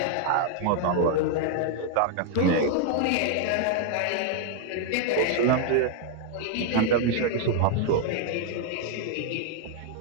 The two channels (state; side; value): different; both; correlation 0.00